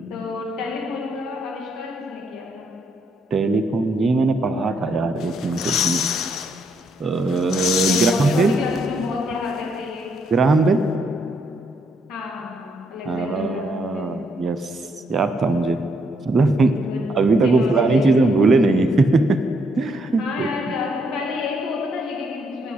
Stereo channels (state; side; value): normal; both; correlation 0.74